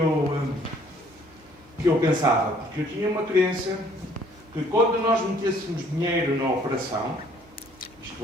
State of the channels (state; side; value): normal; both; correlation 0.59